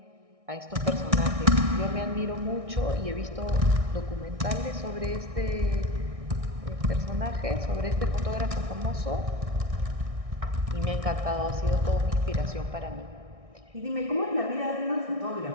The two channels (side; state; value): left; late; 1.6 ms